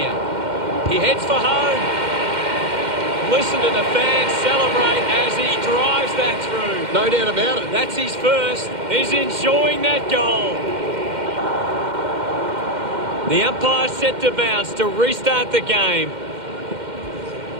He heads for home. Listen to the fans celebrate as he drives that through. No doubt about it. That's his first. He's enjoying that goal. The umpire set to bounce to restart the game.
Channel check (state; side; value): late; left; 2.1 ms